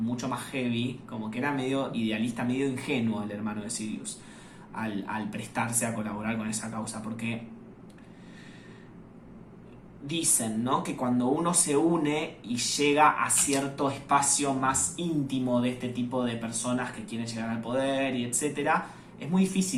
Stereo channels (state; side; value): identical; both; correlation 1.00